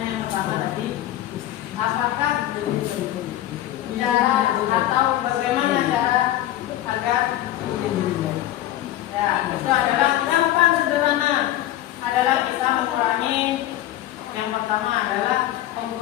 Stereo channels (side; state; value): right; quieter; 13.8 dB